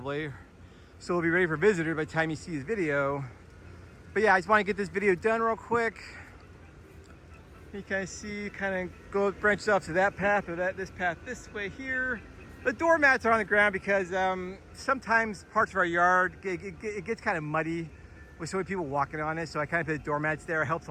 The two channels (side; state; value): both; identical; correlation 1.00